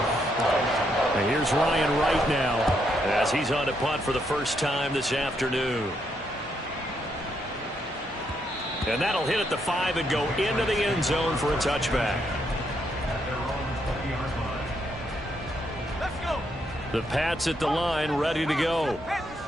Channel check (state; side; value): normal; both; correlation 0.77